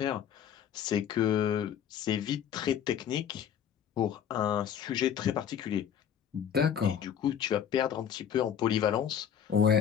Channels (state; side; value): quieter; right; 8.9 dB